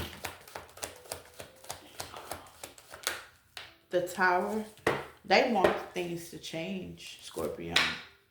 the Tower. They want things to change, Scorpio.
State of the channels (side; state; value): both; identical; correlation 1.00